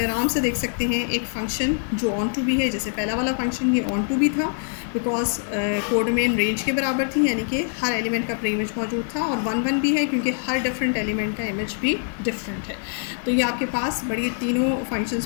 आराम से देख सकते हैं एक फ़ंक्शन जो ऑन टू भी है, जैसे पहला वाला फंक्शन ये ऑन टू भी था बिकॉज कोड डोमेन रेंज के बराबर थी, यानी कि हर एलिमेंट का प्री इमेज मौजूद था, और 1-1 भी है क्योंकि हर डिफरेंट एलिमेंट का इमेज भी डिफरेंट है। तो ये आपके पास बड़ी तीनों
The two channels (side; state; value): right; silent; 63 dB below the other